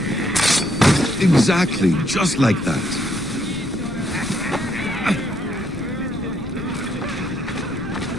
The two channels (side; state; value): left; noise; rumble, 14 dB below the sound